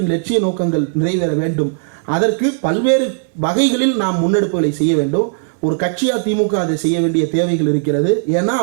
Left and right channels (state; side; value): silent; left; digital silence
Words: லட்சிய நோக்கங்கள் நிறைவேற வேண்டும். அதற்கு பல்வேறு வகைகளில் நாம் முன்னெடுப்புகளை செய்ய வேண்டும். ஒரு கட்சியாக திமுக அதை செய்ய வேண்டிய தேவைகள் இருக்கிறது. ஏன்னா